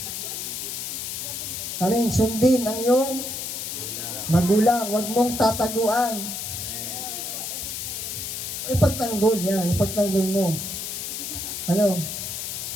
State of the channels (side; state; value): left; noise; hiss, 5 dB below the sound